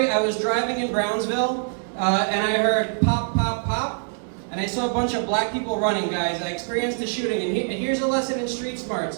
I was driving in Brownsville, and I heard pop, pop, pop, and I saw a bunch of black people running, guys. I experienced a shooting, and here's a lesson in street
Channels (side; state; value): left; silent; digital silence